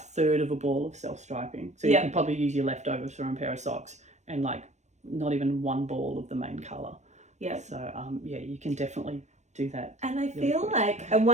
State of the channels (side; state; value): left; late; 0.34 ms